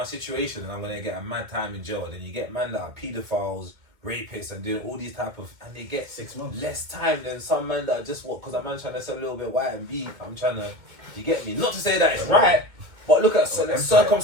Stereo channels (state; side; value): late; left; 2.1 ms